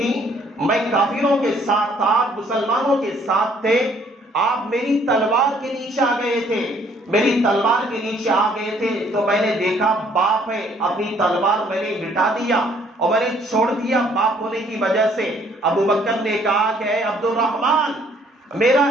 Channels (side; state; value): both; normal; correlation 0.63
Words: میں کافروں کے ساتھ تھا، مسلمانوں کے ساتھ تھے، آپ میری تلوار کے نیچے آ گئے تھے، میری تلوار کے نیچے آ گئے تھے تو میں نے دیکھا باپ ہے، اپنی تلوار میں نے مٹا دیا اور میں نے چھوڑ دیا باپ ہونے کی وجہ سے. ابو بکر نے کہا کہ اے عبد الرحمن، میرا